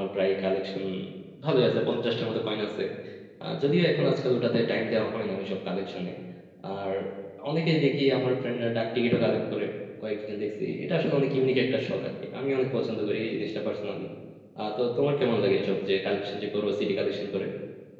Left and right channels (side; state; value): both; identical; correlation 1.00